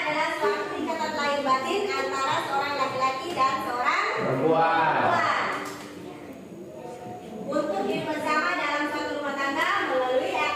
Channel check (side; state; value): both; identical; correlation 1.00